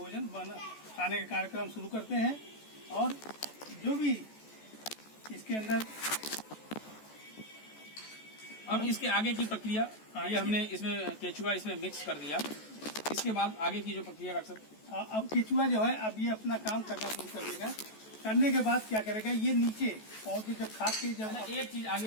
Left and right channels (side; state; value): right; late; 14 ms